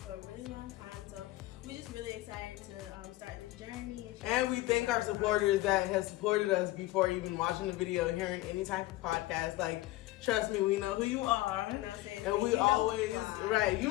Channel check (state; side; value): quieter; right; 17.6 dB